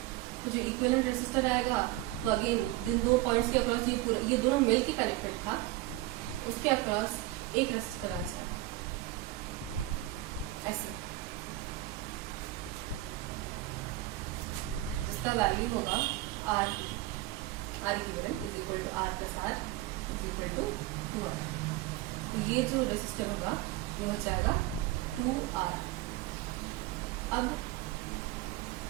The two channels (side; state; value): left; quieter; 16.9 dB